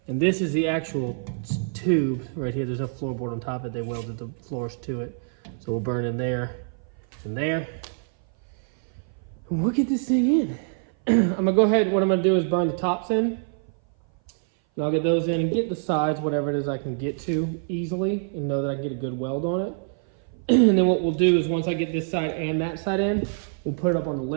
And this is the actual tube right here. There's no floorboard on top of it. They welded the floors to it. So we'll burn in there and there. And we'll get this thing in. I'm gonna go ahead, what I'm gonna do is burn the tops in. And I'll get those in and get the sides, whatever it is I can get to easily and know that I can get a good weld on it. And then what we'll do is once I get this side and that side in, we'll put it up on the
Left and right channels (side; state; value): left; silent; 58 dB below the other